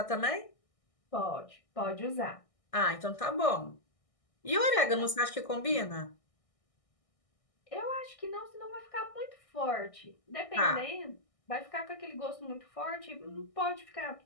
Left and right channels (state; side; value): late; right; 1.6 ms